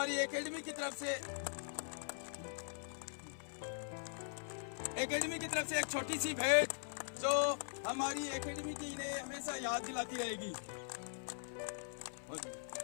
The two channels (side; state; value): right; silent; 50 dB below the other